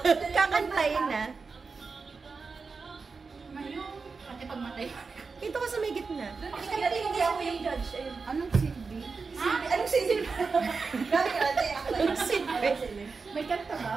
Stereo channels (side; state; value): left; quieter; 4.6 dB